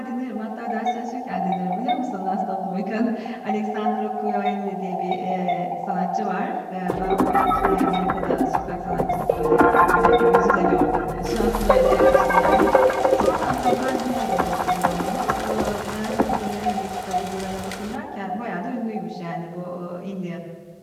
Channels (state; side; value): identical; both; correlation 1.00